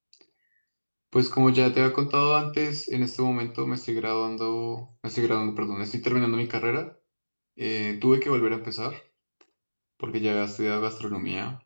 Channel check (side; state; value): both; inverted; correlation -1.00